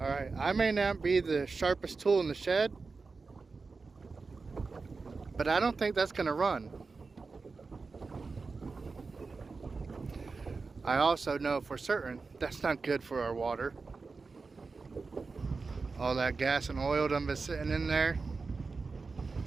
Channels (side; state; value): left; quieter; 4.3 dB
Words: Alright, I may not be the sharpest tool in the shed, but I don't think that's going to run. I also know for certain that's not good for our water. All that gas and oil done been sitting in there.